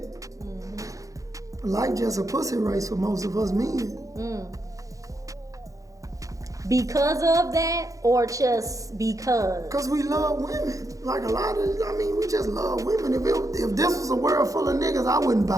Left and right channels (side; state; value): left; late; 0.16 ms